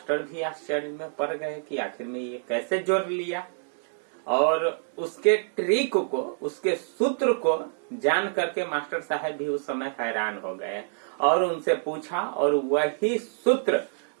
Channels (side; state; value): left; silent; digital silence